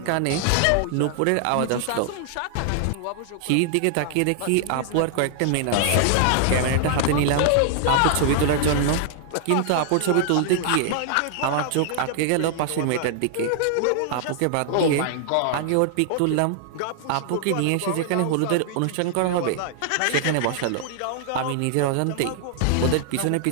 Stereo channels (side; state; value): both; different; correlation 0.00